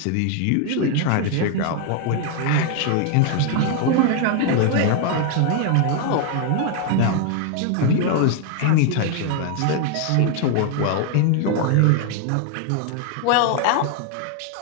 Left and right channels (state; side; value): different; both; correlation 0.00